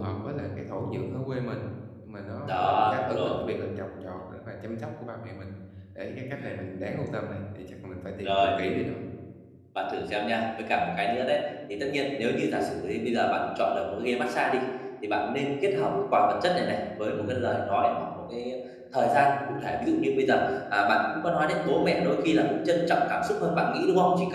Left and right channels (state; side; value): identical; both; correlation 1.00